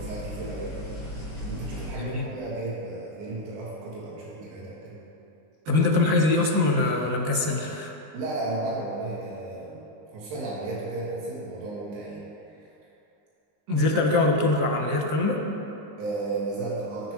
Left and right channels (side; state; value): left; late; 19 ms